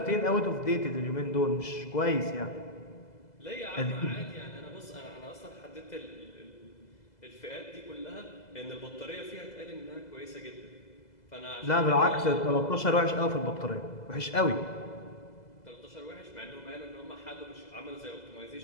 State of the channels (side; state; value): right; late; 2.0 ms